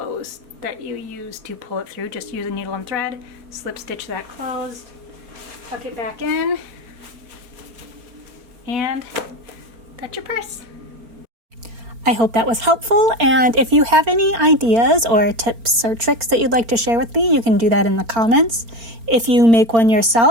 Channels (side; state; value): left; late; 4.4 ms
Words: that you use to pull it through. Just use a needle and thread, slip stitch that closed, tuck it back in, and that's your purse. I hope that was helpful, and if you have any ideas or tips or tricks that you'd like to share with me, you can do that in the comments. If you make one